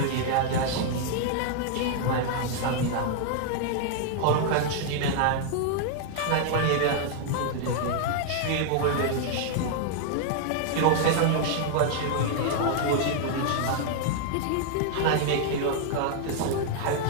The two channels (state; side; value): different; both; correlation 0.00